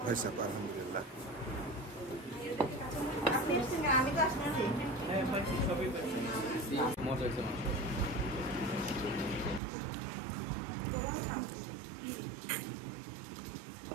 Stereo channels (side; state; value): left; drops out; at 9.6 s